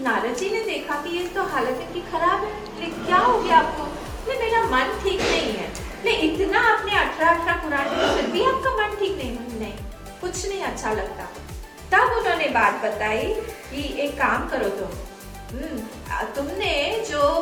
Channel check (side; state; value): both; identical; correlation 1.00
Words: नारद जी ने देखा कि ये तो हालत इनकी खराब है, क्या हो गया आपको? मेरा मन ठीक नहीं है। नहीं इतना आपने 18 पुराण में फिर भी आपका मन ठीक नहीं, कुछ नहीं अच्छा लगता। तब उन्होंने बात बताई कि एक काम करो तुमने जो